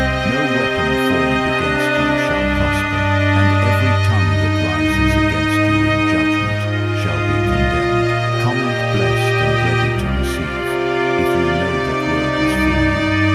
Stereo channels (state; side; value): identical; both; correlation 1.00